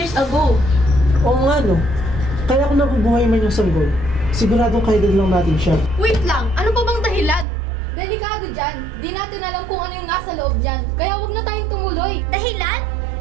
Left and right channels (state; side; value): drops out; left; at 7.5 s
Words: ago. Oo nga no. Kaya kung nabubuhay man yung sanggol, siguradong kaedad lang natin siya. Wait lang, ano pa bang dahilan? Delikado dyan. Di natin alam kung ano yung nasa loob dyan. Kaya wag na tayong tumuloy. Dahilan?